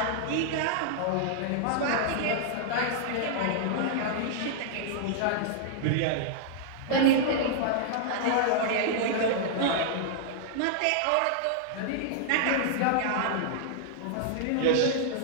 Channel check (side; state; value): both; different; correlation -0.01